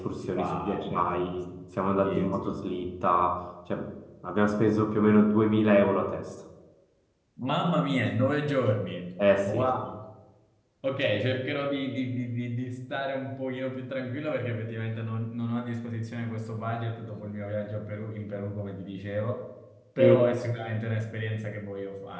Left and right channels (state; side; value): identical; both; correlation 1.00